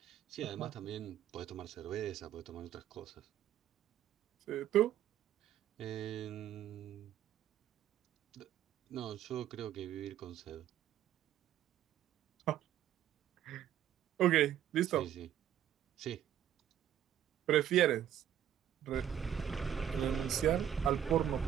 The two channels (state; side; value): quieter; left; 10.6 dB